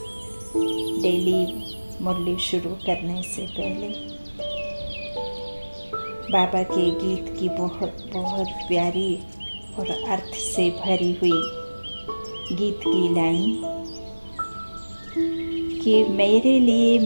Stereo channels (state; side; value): inverted; both; correlation -1.00